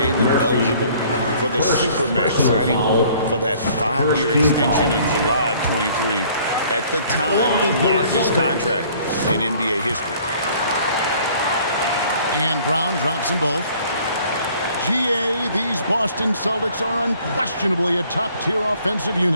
eligible for the Supermax signing for that 5-year extension in July of 23. At the time, the largest contract in NBA history. And Brown drops them both. GA, these Boston Celtics are unquestionably a top-tier offensive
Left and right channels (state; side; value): inverted; both; correlation -0.56